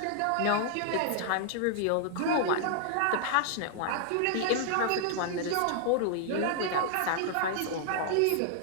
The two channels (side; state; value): both; different; correlation -0.01